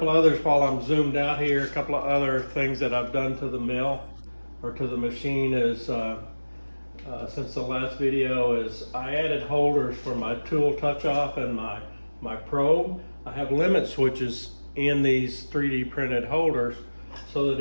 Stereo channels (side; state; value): both; inverted; correlation -1.00